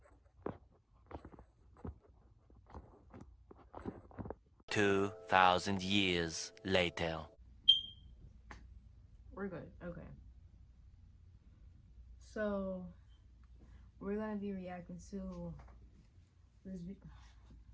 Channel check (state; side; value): identical; both; correlation 1.00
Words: $2,000 years later. We're good. Okay. So we're gonna be reacting to this video.